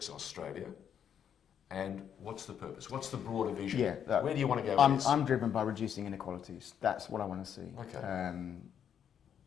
Australia? And what's the purpose? What's the broader vision? Where do you want to go with this? I'm driven by reducing inequalities. That's what I want to see. Okay.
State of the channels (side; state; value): right; quieter; 8.6 dB